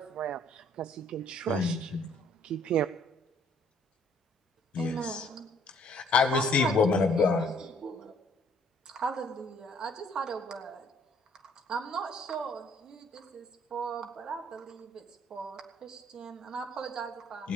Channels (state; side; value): normal; both; correlation 0.62